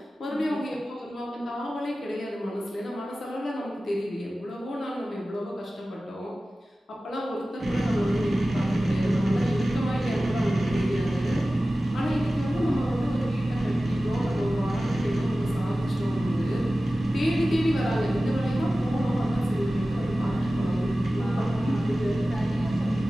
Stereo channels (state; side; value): normal; both; correlation 0.96